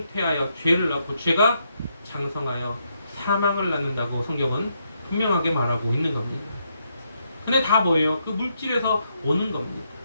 죄를 낳고 죄가 장성하여 사망을 낳는다고 성경은 분명하게 말하고 있는 겁니다. 근데 다 뭐예요? 그 물질에서 오는 겁니다.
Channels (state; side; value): inverted; both; correlation -0.78